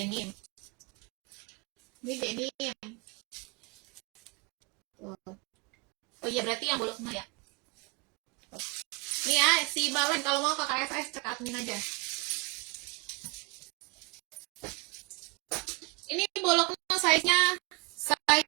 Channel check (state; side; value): quieter; left; 28.4 dB